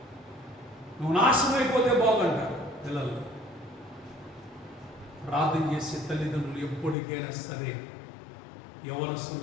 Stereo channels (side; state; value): right; drops out; at 7.0 s